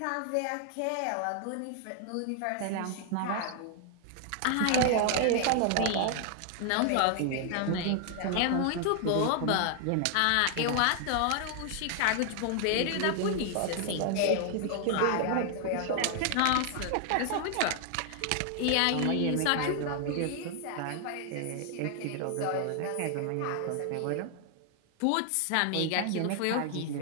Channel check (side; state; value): both; different; correlation 0.00